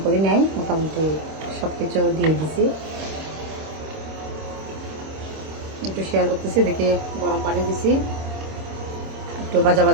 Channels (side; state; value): left; late; 26 ms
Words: করি নাই, মোটামুটি সব কিছু দিয়ে দিছি, একটু শেয়ার করতেছি। দেখে গরম পানি দিছি, একটু ভাজা